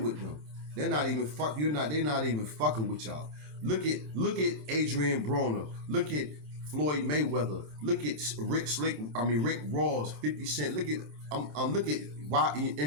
them. They're not even they're not even fucking with y'all. Look at Adrian Broner. Look at Floyd Mayweather. Look at Rick Ross, 50 Cent. Look at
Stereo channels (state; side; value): late; left; 27 ms